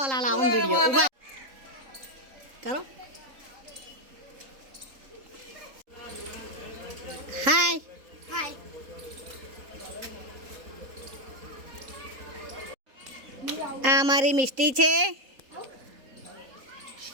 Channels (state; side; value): late; left; 3.8 ms